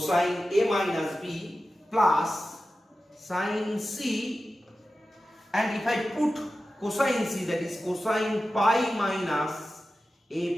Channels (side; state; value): both; normal; correlation 0.93